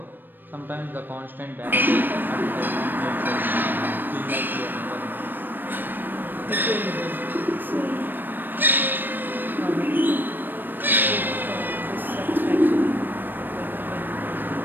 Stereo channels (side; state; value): left; late; 0.093 ms